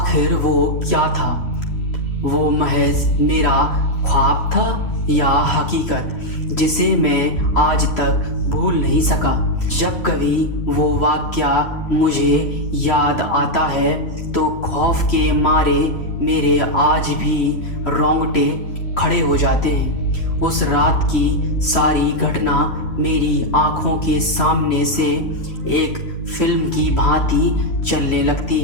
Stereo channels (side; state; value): right; late; 3.1 ms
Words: वो क्या था? वो महज मेरा ख्वाब था या हकीकत जिसे मैं आज तक भूल नहीं सका। जब कभी वो वाक़या मुझे याद आता है तो खौफ के मारे मेरे आज भी रोंगटे खड़े हो जाते हैं। उस रात की सारी घटना मेरी आंखों के सामने से एक फिल्म की भांति चलने लगती